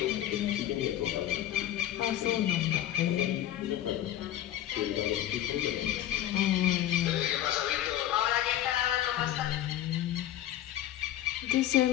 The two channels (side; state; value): right; quieter; 12.3 dB